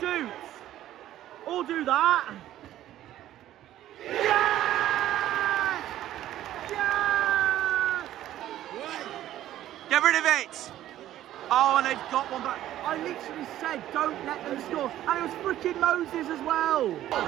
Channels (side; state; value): left; quieter; 13.1 dB